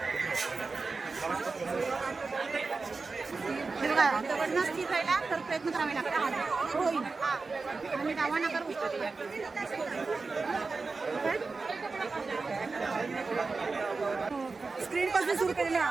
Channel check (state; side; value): quieter; left; 4.1 dB